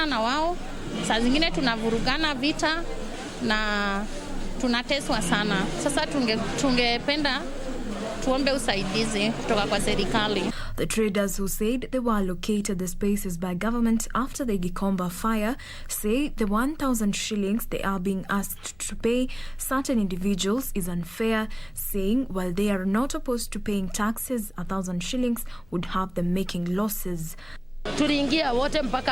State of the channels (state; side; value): noise; left; hum, 27 dB below the sound